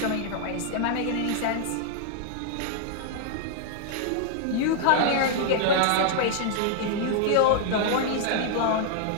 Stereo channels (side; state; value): both; different; correlation -0.01